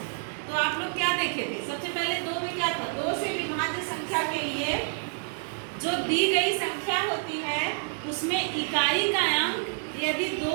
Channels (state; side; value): silent; left; digital silence